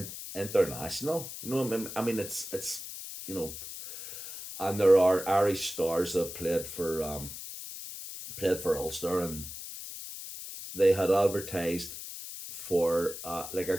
international. You know, I mean, it's you know, and there are Irish stars that played for Ulster, and they had advertised for like a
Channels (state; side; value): noise; left; hiss, 10 dB below the sound